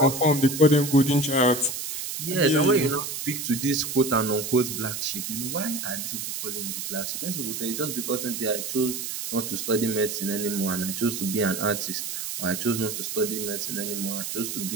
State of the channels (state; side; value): noise; right; hiss, 5 dB below the sound